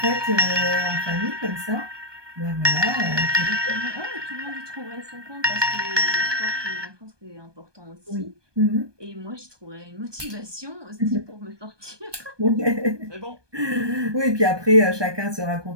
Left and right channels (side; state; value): left; late; 1.2 ms